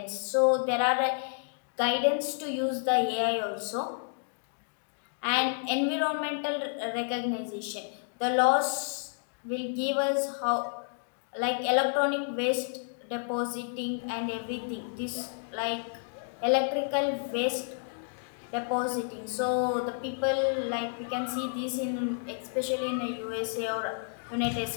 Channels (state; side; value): silent; right; digital silence